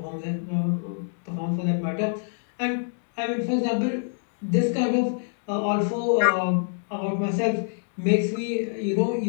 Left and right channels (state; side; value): silent; right; digital silence